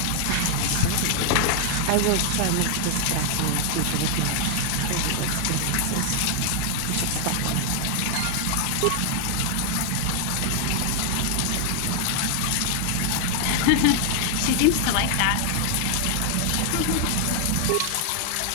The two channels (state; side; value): different; both; correlation 0.00